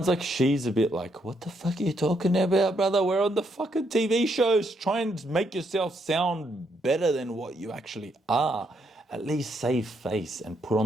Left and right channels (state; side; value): normal; both; correlation 0.75